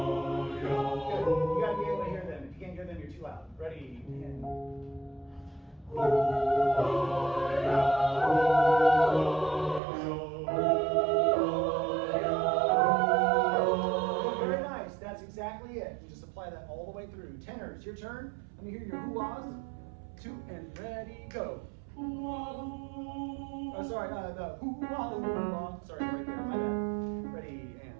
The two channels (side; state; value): left; drops out; at 9.8 s